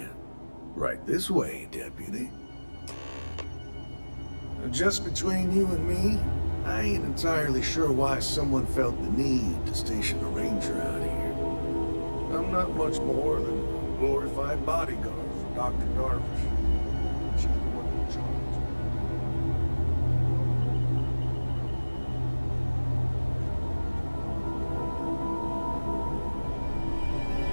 Right this way, deputy. Just between you and me, I ain't entirely sure why someone felt the need to station a ranger out here. I'm not much more than a glorified bodyguard for Dr. Darvish. She's the one in charge.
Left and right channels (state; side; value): inverted; both; correlation -1.00